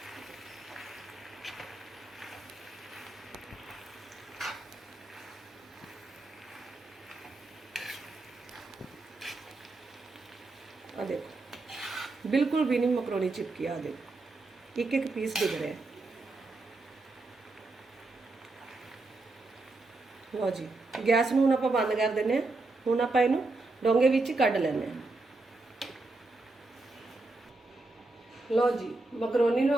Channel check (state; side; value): quieter; left; 3.2 dB